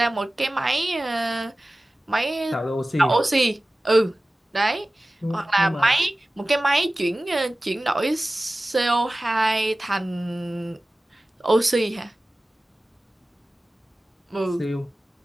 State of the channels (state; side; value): normal; both; correlation 0.97